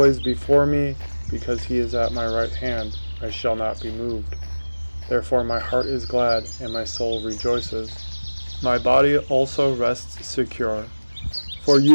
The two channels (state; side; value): inverted; both; correlation -1.00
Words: before me, because he is at my right hand. I shall not be moved. Therefore my heart is glad, and my soul rejoices. My body also rests secure. For